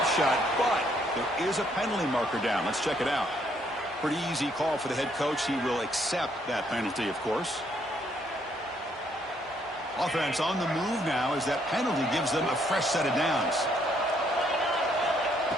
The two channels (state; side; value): normal; both; correlation 0.70